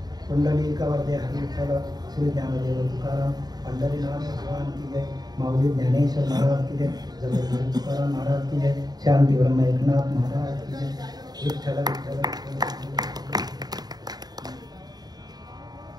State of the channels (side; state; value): left; late; 0.19 ms